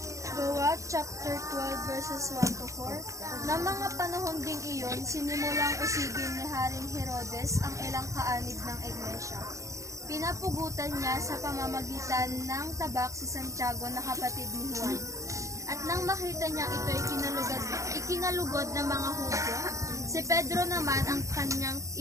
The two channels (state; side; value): late; left; 0.15 ms